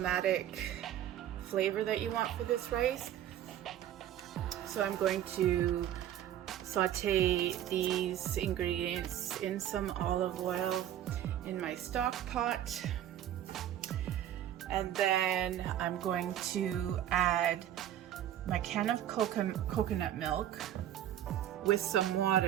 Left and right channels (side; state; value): left; quieter; 11.5 dB